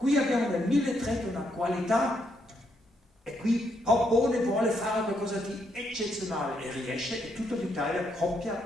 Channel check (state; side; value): normal; both; correlation 0.76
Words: abbiamo nel 1300 una qualità, e qui Popone vuole fare qualcosa di eccezionale e riesce, e tutta l'Italia copia